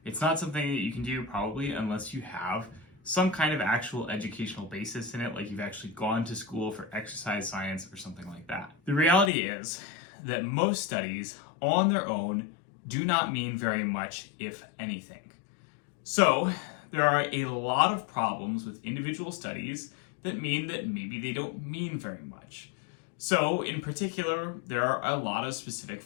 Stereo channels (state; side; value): drops out; right; at 9.3 s